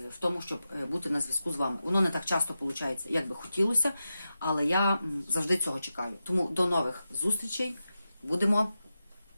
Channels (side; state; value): both; inverted; correlation -0.91